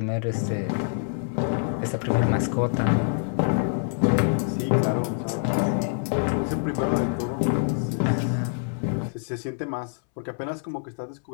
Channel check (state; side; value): silent; right; 61 dB below the other